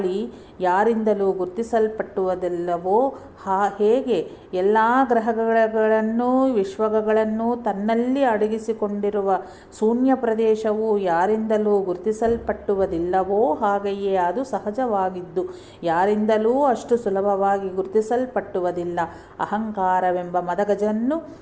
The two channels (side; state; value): both; identical; correlation 1.00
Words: ಯಾರಿಂದಲೂ ಗುರುತಿಸಲ್ಪಟ್ಟುವುದಿಲ್ಲವೋ ಹೇಗೆ ಎಲ್ಲ ಗ್ರಹಗಳನ್ನು ವಿಶ್ವಗಳನ್ನು ತನ್ನಲ್ಲಿ ಅಡಗಿಸಿಕೊಂಡಿರುವ ಶೂನ್ಯ ಪ್ರದೇಶವು ಯಾರಿಂದಲೂ ಗುರುತಿಸಲ್ಪಟ್ಟುವುದಿಲ್ಲವೋ ಹಾಗೆಯೇ ಅದು ಸಹಜವಾಗಿದ್ದು ಯಾರಿಂದಲೂ ಅಷ್ಟು ಸುಲಭವಾಗಿ ಗುರುತಿಸಲ್ಪಟ್ಟುವುದಿಲ್ಲ. ಅಹಂಕಾರವೆಂಬ ಮದಗಜನ್ನು